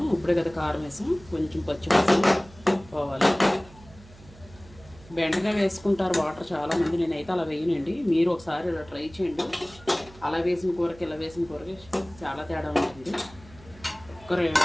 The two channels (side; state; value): right; noise; hum, 22 dB below the sound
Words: ఇప్పుడే కదా కారం వేసాం, కొంచెం పచ్చిమిర్చి పోవాలి. బెండగా వేసుకుంటారు వాటర్ చాలామంది, నేనైతే అలా వేయనండి. మీరు ఒకసారి ఇలా ట్రై చేయండి. అలా వేసిన కూరకి ఇలా వేసిన కూరకి చాలా తేడా ఉంటుంది.